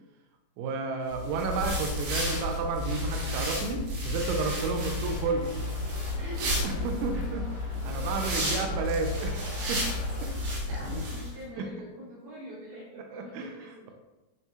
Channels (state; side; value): late; left; 21 ms